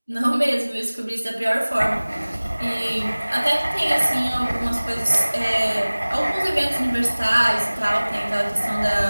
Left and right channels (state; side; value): inverted; both; correlation -1.00